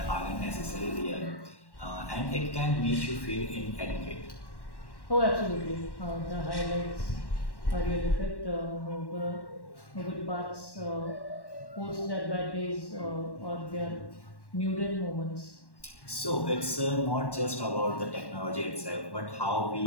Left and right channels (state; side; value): late; right; 1.1 ms